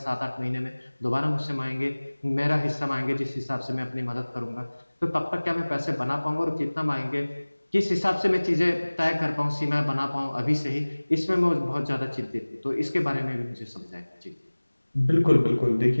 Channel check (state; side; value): inverted; both; correlation -1.00